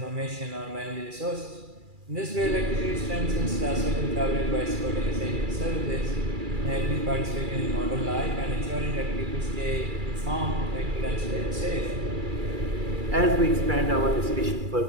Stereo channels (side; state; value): left; late; 2.4 ms